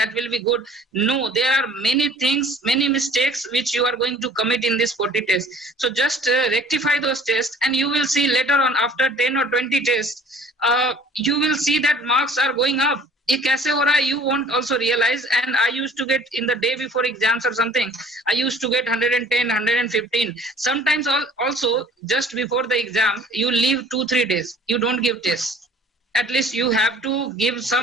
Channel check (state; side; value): normal; both; correlation 0.51